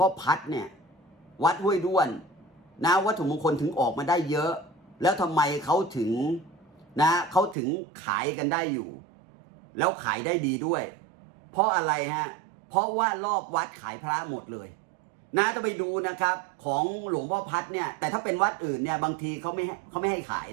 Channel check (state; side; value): drops out; left; at 7.6 s